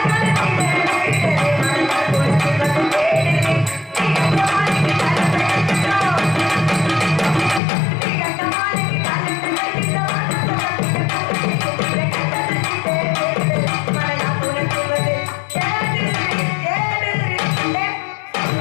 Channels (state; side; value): drops out; right; at 7.6 s